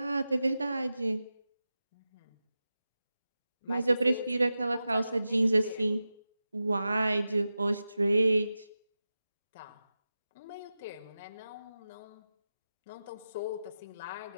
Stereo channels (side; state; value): both; inverted; correlation -0.93